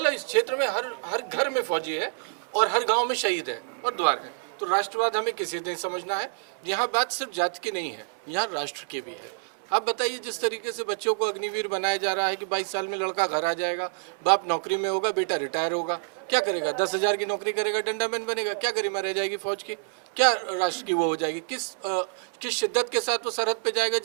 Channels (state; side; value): silent; left; digital silence